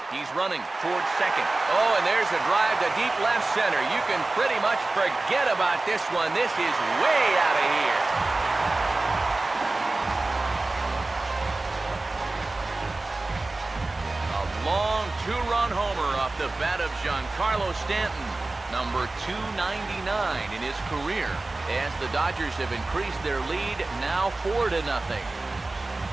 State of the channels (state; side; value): quieter; left; 3.1 dB